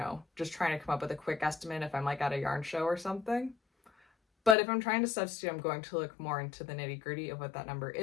just trying to come up with a quick estimate if I'm like at a yarn show or something. But if I'm trying to substitute, I'm going to look more into the nitty gritty of what that number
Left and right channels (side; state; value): right; drops out; at 4.5 s